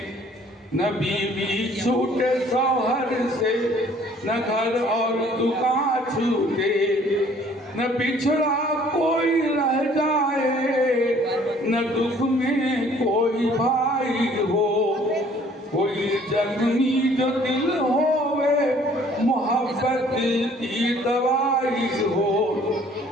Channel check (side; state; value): both; normal; correlation 0.57